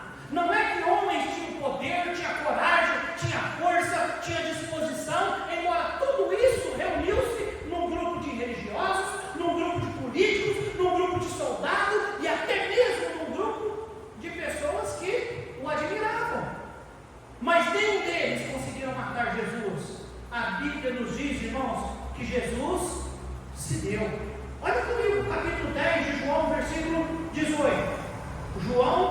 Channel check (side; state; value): both; identical; correlation 1.00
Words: Não é que homens tinham poder, tinha coragem, tinha força, tinha disposição, embora tudo isso reuniu-se num grupo de religiosos, num grupo de políticos, num grupo de soldados e até mesmo num grupo de pessoas que o admiravam. Mas nenhum deles conseguiram matar Jesus. A Bíblia nos diz, irmãos, que Jesus se deu. Olha comigo, capítulo 10 de João, versículo 18.